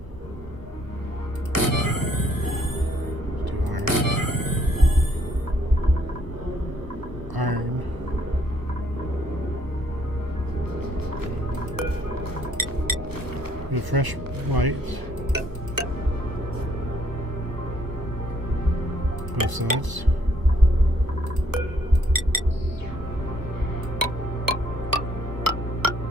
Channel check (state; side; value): late; left; 1.1 ms